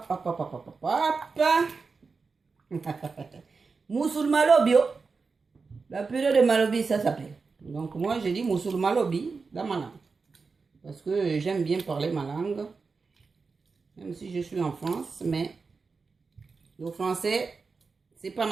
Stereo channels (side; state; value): left; quieter; 4.6 dB